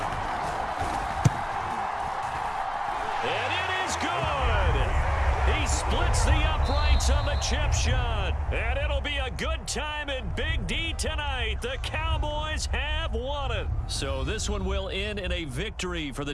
And it is good. He splits the uprights on the chip shot. And it'll be a good time in Big D tonight. The Cowboys have won it. So this one will end in a victory for the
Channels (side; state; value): both; identical; correlation 1.00